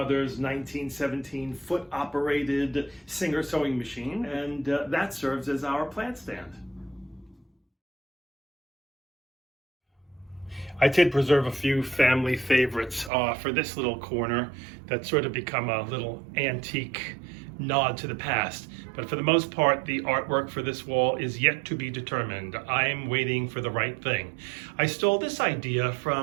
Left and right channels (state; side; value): drops out; left; at 13.1 s